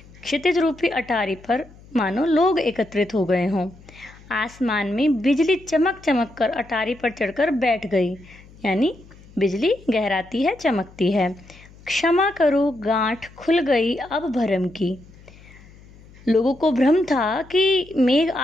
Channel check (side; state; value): left; noise; hum, 23 dB below the sound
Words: क्षितिज रूपी अटारी पर मानो लोग एकत्रित हो गए हों। आसमान में बिजली चमक चमक कर अटारी पर चढ़कर बैठ गई, यानी बिजली गहराती है, चमकती है। क्षमा करो गांठ खुल गई अब भरम की। लोगों को भ्रम था कि मेघ